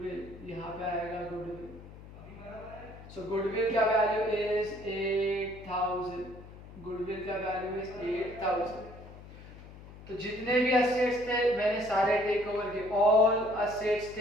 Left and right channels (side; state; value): left; noise; hum, 17 dB below the sound